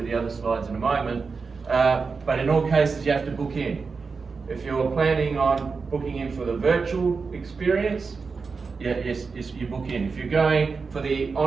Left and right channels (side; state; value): left; quieter; 4.8 dB